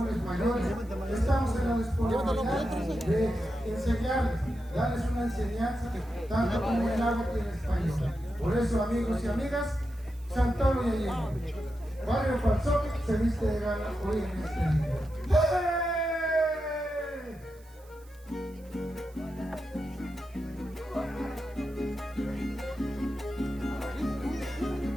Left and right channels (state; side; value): noise; right; hiss, 27 dB below the sound